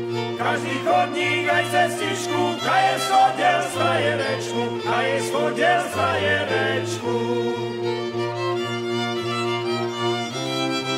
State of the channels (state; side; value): identical; both; correlation 1.00